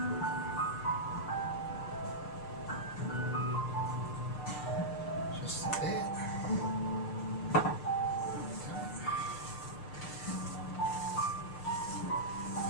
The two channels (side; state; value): right; late; 6.6 ms